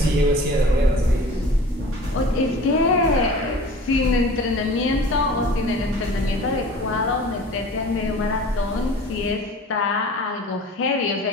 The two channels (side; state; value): both; normal; correlation 0.43